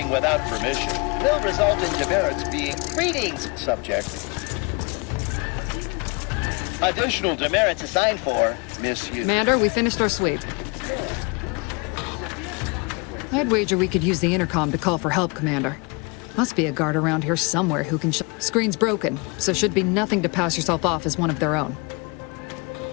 without permission will result in demerits being... Greetings, subject. Additional demerits assigned for misuse. Commander, we finished our sweep. I'd wager we could use the intercom to call for help, Commander. Must be a guard around here somewhere who can Screen's broken, so should be nothing to pass yourself off as one of their own.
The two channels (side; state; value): right; quieter; 30.1 dB